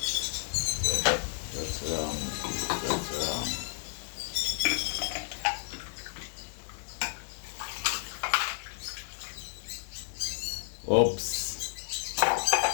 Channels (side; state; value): right; silent; digital silence